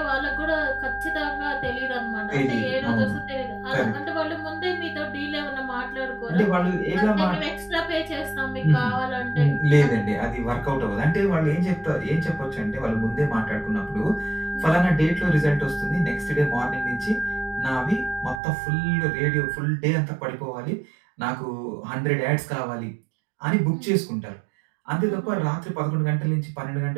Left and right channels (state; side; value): drops out; left; at 18.4 s